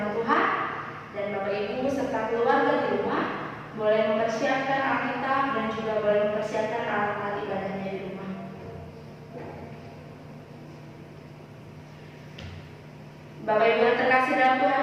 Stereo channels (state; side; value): identical; both; correlation 1.00